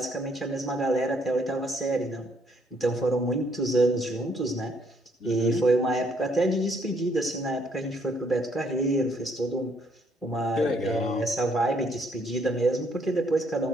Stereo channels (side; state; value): both; normal; correlation 0.68